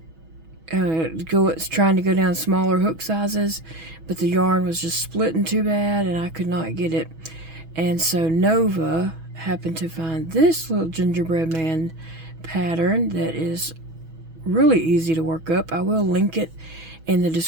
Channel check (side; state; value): left; late; 6.2 ms